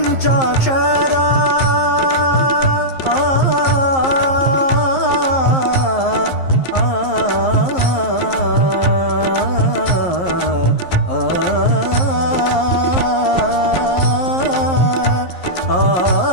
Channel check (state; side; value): late; right; 11 ms